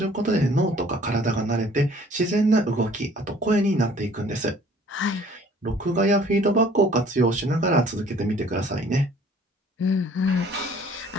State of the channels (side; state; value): both; normal; correlation 0.55